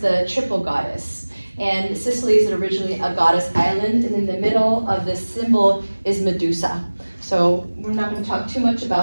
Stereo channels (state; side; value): inverted; both; correlation -1.00